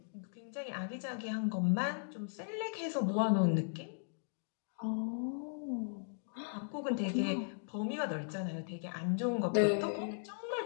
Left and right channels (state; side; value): silent; right; digital silence